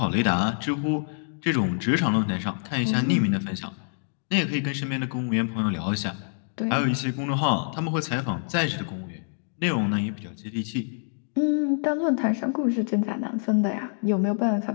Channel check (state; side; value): silent; right; digital silence